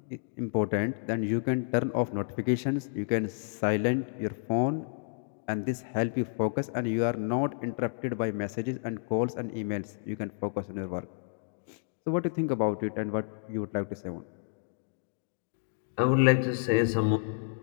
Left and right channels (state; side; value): silent; right; digital silence